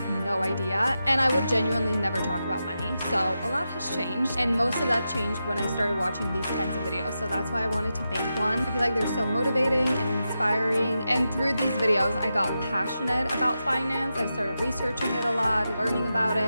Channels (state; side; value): inverted; both; correlation -0.89